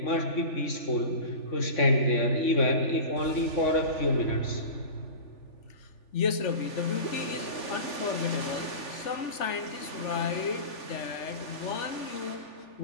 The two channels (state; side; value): late; right; 3.4 ms